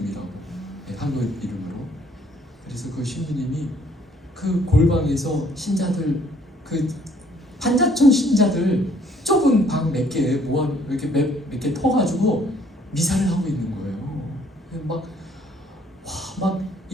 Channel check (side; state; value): both; normal; correlation 0.62